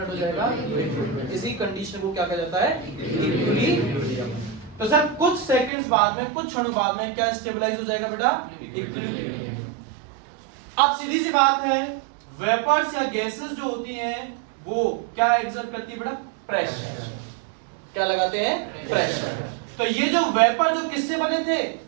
हो जाएगा? लिक्विड में। इसी कंडीशन को क्या कहा जाता है? इक्विलिब्रियम। तो सर कुछ सेकंड्स बाद में, कुछ क्षणों बाद में क्या स्टेबलाइज हो जाएगा बेटा? इक्विलिब्रियम। अब सीधी सी बात है, वेपर्स या गैसेस जो होती हैं वो क्या एग्जर्ट करती है बेटा? प्रेशर। क्या लगाते हैं? प्रेशर। तो ये जो वेपर जो किससे बने थे?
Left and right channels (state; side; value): drops out; left; at 5.7 s